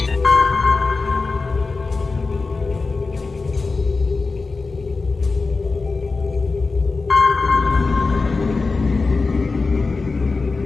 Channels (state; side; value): quieter; right; 4.0 dB